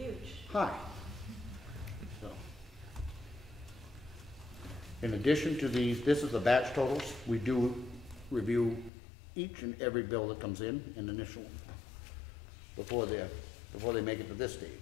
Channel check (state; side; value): drops out; right; at 8.9 s